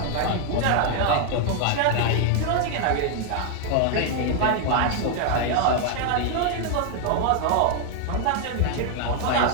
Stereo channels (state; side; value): different; both; correlation 0.00